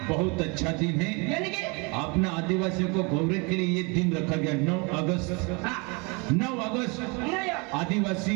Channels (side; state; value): left; quieter; 29.9 dB